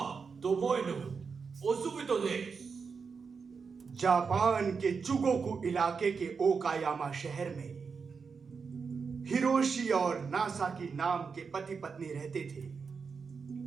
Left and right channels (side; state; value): left; quieter; 5.4 dB